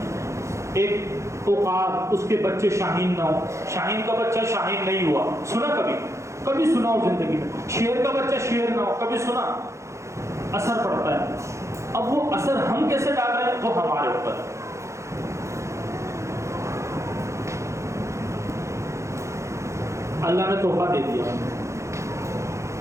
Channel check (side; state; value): left; late; 0.14 ms